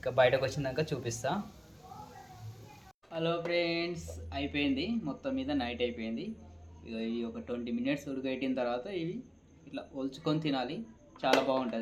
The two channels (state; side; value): identical; both; correlation 1.00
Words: బయటకు వచ్చినాక చూపిస్తా. హలో ఫ్రెండ్స్, అయిపోయింది మొత్తం మీద, నైట్ అయిపోయింది. ఇక ఇవి ఒక 20 మినిట్స్ ఉడకబెట్టిన తర్వాత ఇవి ఇట్లా ఒలుచుకొని తినాలి. చాలా